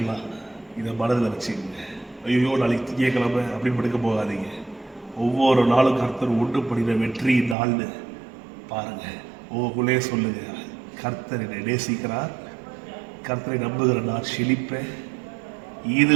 இதை மனதில் வச்சுக்கோங்க. ஐயோ நாளைக்கு திங்கக்கிழமை அப்படின்னு படுக்க போகாதீங்க. ஒவ்வொரு நாளும் கர்த்தர் ஒன்று பண்ணின வெற்றி நாள்னு பாருங்க. உங்களுக்குள்ளே சொல்லுங்க, கர்த்தர் என்னை நேசிக்கிறார், கர்த்தரை நம்புகிற நான் செழிப்பேன். இது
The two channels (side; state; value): left; drops out; at 7.6 s